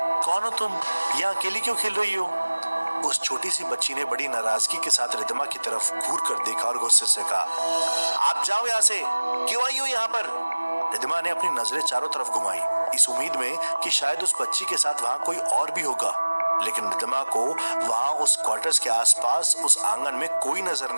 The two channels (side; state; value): both; inverted; correlation -1.00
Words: कौन हो तुम? यहाँ अकेली क्यों खेल रही हो? उस छोटी सी बच्ची ने बड़ी नाराजगी के साथ रिद्धिमा की तरफ घूर कर देखा और गुस्से से कहा, आप जाओ यहाँ से, क्यों आई हो यहाँ पर? रिद्धिमा ने अपनी नजरें चारों तरफ घुमाई, इस उम्मीद में कि शायद उस बच्ची के साथ वहां कोई और भी होगा, लेकिन रिद्धिमा को वहां उस क्वार्टर्स के आसपास उस आंगन में कोई नजर